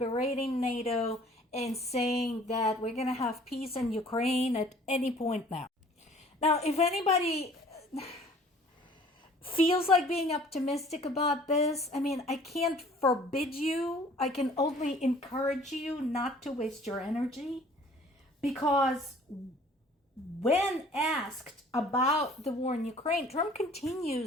NATO and saying that we're going to have peace in Ukraine at any point now. Now, if anybody feels like being optimistic about this, I mean, I can't forbid you. I can only encourage you not to waste your energy, because when asked about the war in Ukraine, Trump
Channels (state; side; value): normal; both; correlation 0.53